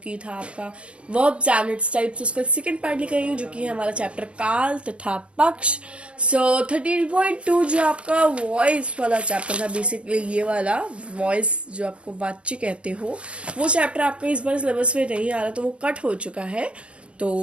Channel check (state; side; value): late; left; 0.059 ms